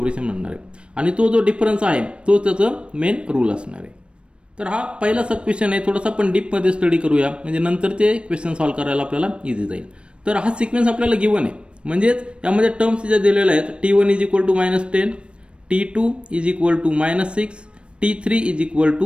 म्हणणार आहे. आणि तो जो डिफरन्स आहे तो त्याचं मेन रूल असणार आहे. तर हा पहिला सब क्वेश्चन आहे. थोडासा आपण डीप मध्ये स्टडी करूया, म्हणजे नंतर ते क्वेश्चन सॉल्व्ह करायला आपल्याला इझी जाईल. तर हा सिक्वेन्स आपल्याला गिवन आहे, म्हणजेच यामध्ये टर्म्स ज्या दिलेल्या आहेत, T1 is equal to -10, T2 is equal to -6, T3 is equal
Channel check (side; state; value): left; late; 0.058 ms